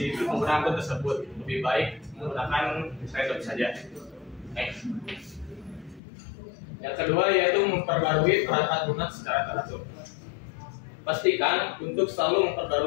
pengguna akun tersebut. Lebih baik menggunakan random saja. Next. Yang kedua yaitu memperbarui perangkat lunak secara teratur. Pastikan untuk selalu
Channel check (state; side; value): drops out; right; at 6.0 s